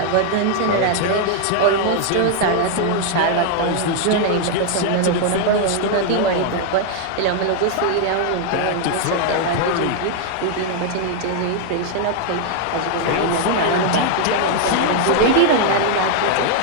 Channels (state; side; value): different; both; correlation 0.00